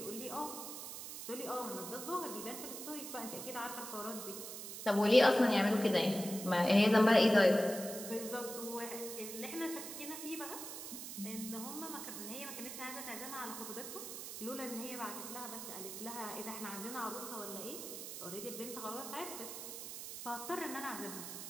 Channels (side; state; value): right; noise; hiss, 8 dB below the sound